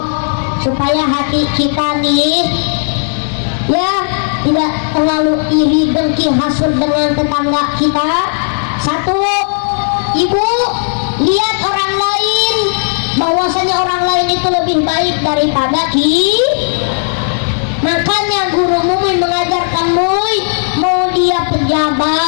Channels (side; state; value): right; silent; digital silence